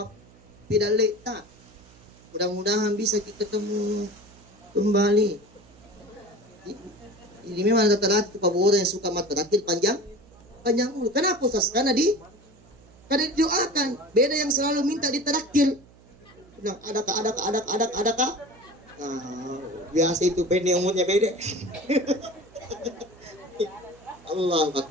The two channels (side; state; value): right; noise; hum, 25 dB below the sound